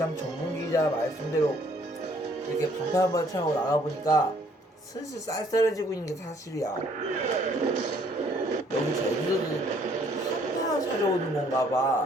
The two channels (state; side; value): normal; both; correlation 0.63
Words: 전문 기자 말씀대로 이렇게 방탄 차고 나가보니까 슬슬 쌀쌀해지고 있는 게 사실이야. 여기 제주도는 한파 찾아오는 건가 봐.